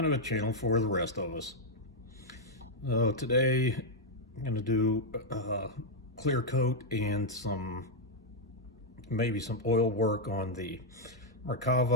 of a channel for the rest of us. Today I'm going to do clear coat and maybe some oil work on the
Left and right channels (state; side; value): normal; both; correlation -0.02